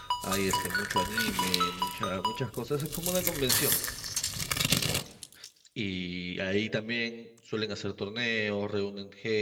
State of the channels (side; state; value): both; identical; correlation 1.00